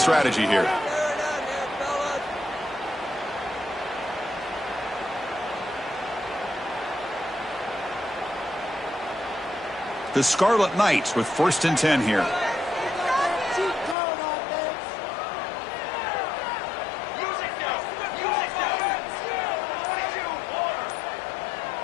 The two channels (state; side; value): drops out; right; at 14.0 s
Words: here. The Scarlet Knights with 1st and 10 here.